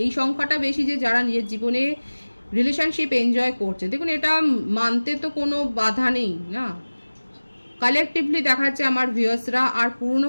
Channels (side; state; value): both; inverted; correlation -1.00